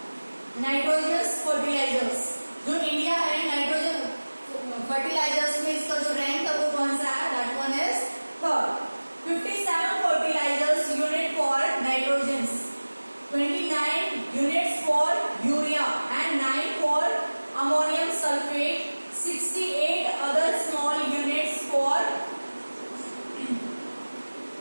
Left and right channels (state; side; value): inverted; both; correlation -1.00